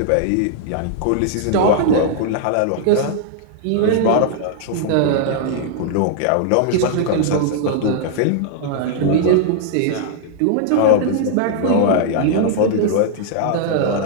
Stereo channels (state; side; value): different; both; correlation -0.01